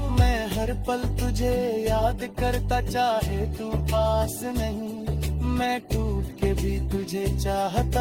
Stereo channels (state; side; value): identical; both; correlation 1.00